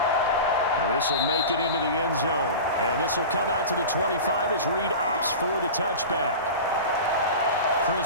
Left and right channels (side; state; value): both; inverted; correlation -0.31